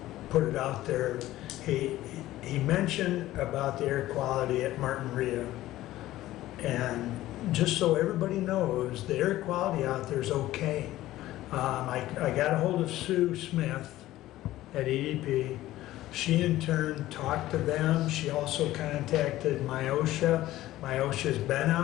put it out there. He mentioned about the air quality at Martin Ria. And just so everybody knows, the air quality out there is okay. I got a hold of Sue Smith at EDP. She in turn talked to them. She also contacted Myosha. Myosha's been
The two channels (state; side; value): quieter; right; 15.4 dB